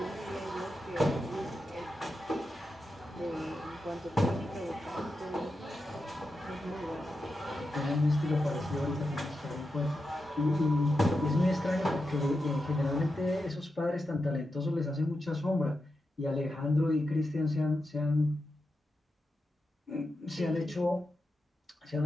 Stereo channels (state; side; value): normal; both; correlation 0.89